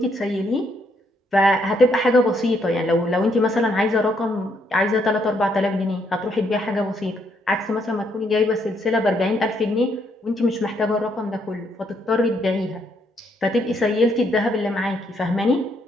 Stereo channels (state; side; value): normal; both; correlation 0.73